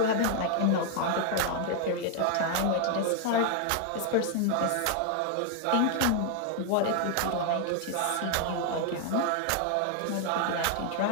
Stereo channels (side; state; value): both; different; correlation 0.00